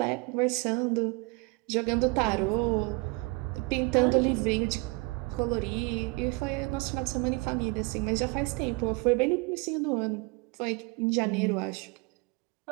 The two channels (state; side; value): quieter; left; 27.4 dB